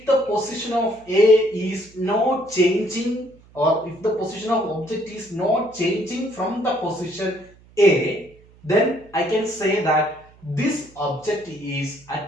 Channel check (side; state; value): right; noise; hum, 27 dB below the sound